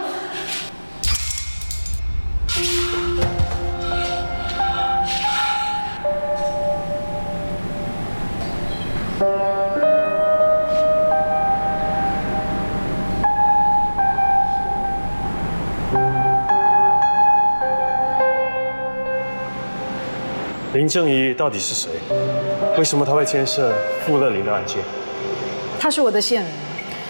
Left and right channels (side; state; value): both; inverted; correlation -1.00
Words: 林正仪到底是谁？为什么他会牵涉傅乐林的案件？他是我的线人，